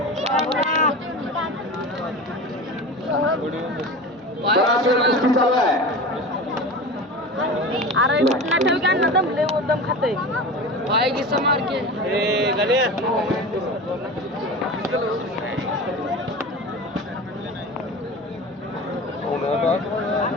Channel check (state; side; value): normal; both; correlation 0.31